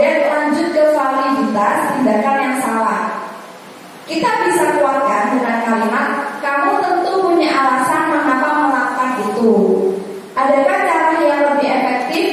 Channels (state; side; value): identical; both; correlation 1.00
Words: lanjut ke validitas tindakan yang salah. Kita bisa kuatkan dengan kalimat, kamu tentu punya alasan mengapa melakukan itu. Adakah cara yang lebih efektif